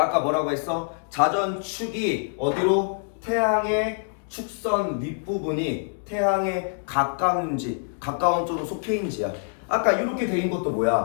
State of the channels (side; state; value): right; silent; 62 dB below the other